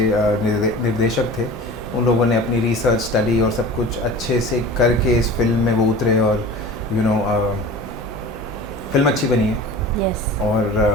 निर्देशक थे उन लोगों ने अपनी रिसर्च स्टडी और सब कुछ अच्छे से करके इस फिल्म में वो उतरे और फिल्म अच्छी बनी है।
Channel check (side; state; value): both; normal; correlation 0.38